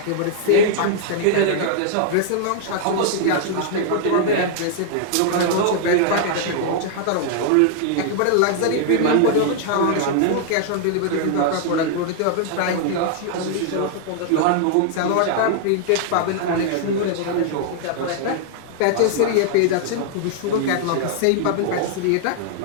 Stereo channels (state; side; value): different; both; correlation -0.01